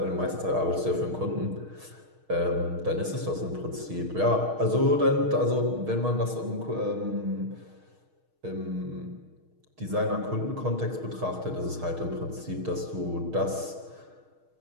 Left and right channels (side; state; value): left; late; 6.4 ms